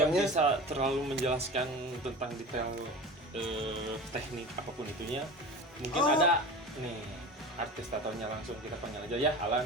tatonya. bisa terlalu menjelaskan tentang detail teknik apapun itunya. Mungkin ada nih artis tatonya, langsung kita panggil aja ya.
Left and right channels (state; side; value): normal; both; correlation 0.34